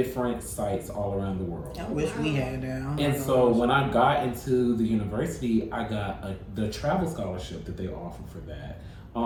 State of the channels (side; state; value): both; identical; correlation 1.00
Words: sites all around the world. I wish we had that. And so when I got into the university, I got the travel scholarship that they offer for that,